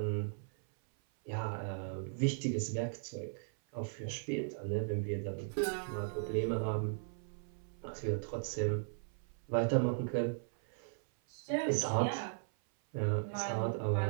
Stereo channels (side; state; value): left; silent; 53 dB below the other